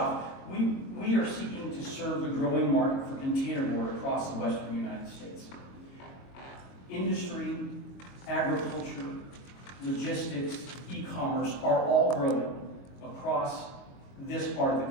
we are seeking to serve the growing market for containerboard across the western United States. Industry, agriculture, logistics, e-commerce are all growing across this part of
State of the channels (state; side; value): late; right; 22 ms